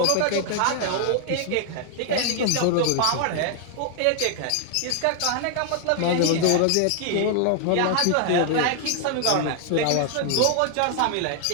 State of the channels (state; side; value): different; both; correlation 0.00